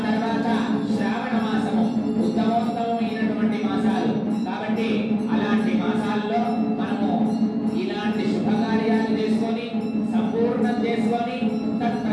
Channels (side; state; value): both; identical; correlation 1.00